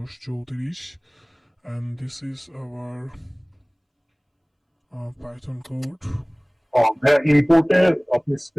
and this is our Python code. ইম্পোর্টে আপনি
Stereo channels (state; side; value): identical; both; correlation 1.00